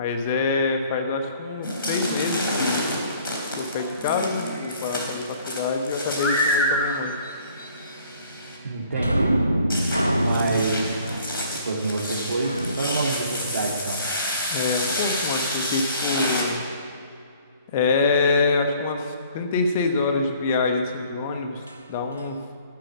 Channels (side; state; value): both; inverted; correlation -0.57